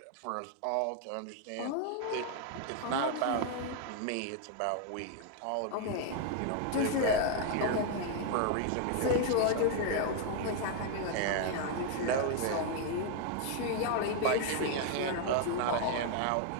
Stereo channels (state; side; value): different; both; correlation 0.00